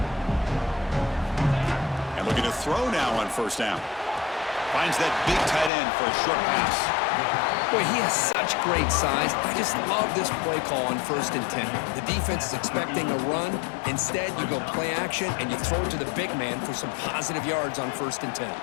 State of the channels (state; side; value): drops out; right; at 5.7 s